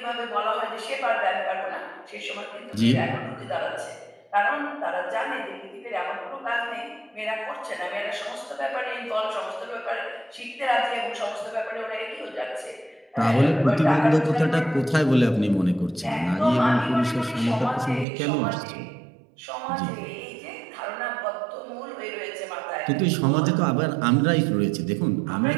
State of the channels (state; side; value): drops out; left; at 18.1 s